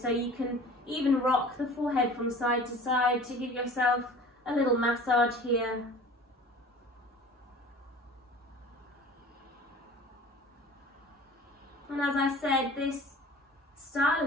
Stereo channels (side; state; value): both; normal; correlation 0.43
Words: you can even rock the forehead from side to side to give yourself a little massage here. And as I said, this